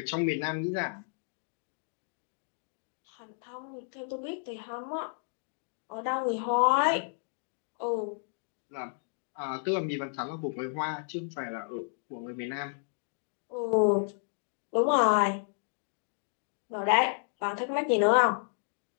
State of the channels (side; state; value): right; silent; digital silence